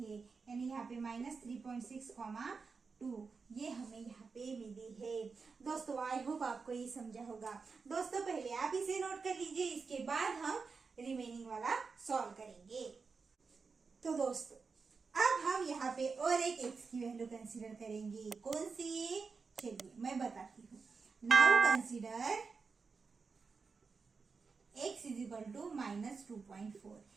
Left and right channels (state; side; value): quieter; left; 4.9 dB